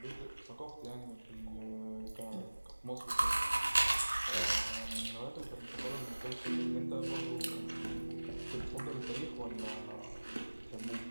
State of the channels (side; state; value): both; inverted; correlation -1.00